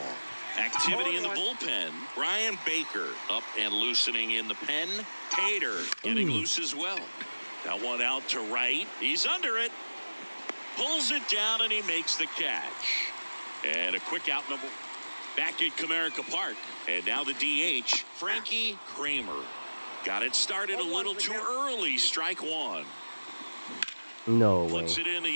Activity in the bullpen. Brian Baker up and loosening in the pen. Tater getting loose as well. That one out to right. He's under it. Pulls it down and he makes the catch. And a quick out number back at Comerica Park. And now the DH, Frankie Kramer. Got it started a little too early. Strike 1. No way. Flips it in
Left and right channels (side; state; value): both; inverted; correlation -1.00